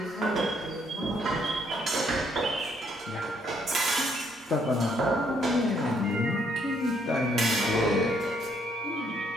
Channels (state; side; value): normal; both; correlation 0.69